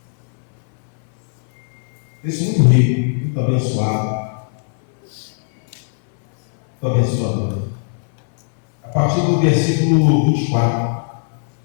Texto muito rico, muito abençoado, muito abençoador. A partir do versículo 24.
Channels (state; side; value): silent; right; 63 dB below the other